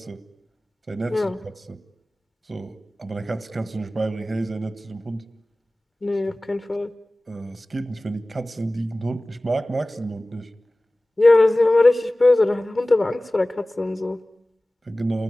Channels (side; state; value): both; normal; correlation 0.98